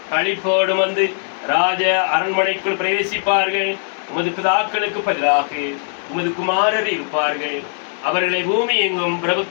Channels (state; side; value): silent; right; digital silence